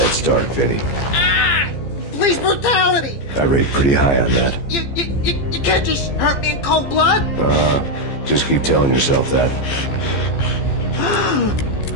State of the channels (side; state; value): right; late; 15 ms